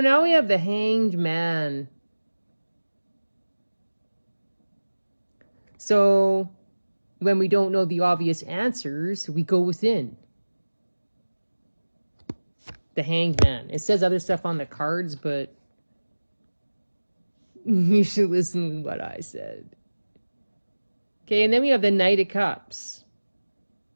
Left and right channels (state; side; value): inverted; both; correlation -1.00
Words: now we have the Hanged Man. So when we don't know the obvious answers, we go within. The Hanged Man. It says other stuff on the cards, but you should listen to what I said. Okay, and then we have the Knight of Cups.